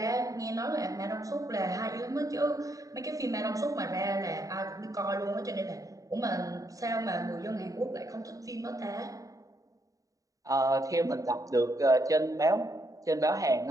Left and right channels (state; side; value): late; left; 0.16 ms